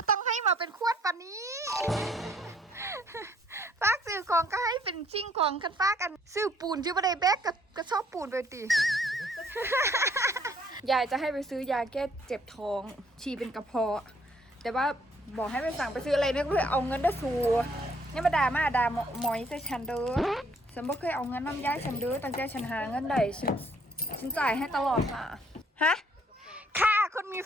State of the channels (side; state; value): both; normal; correlation 0.64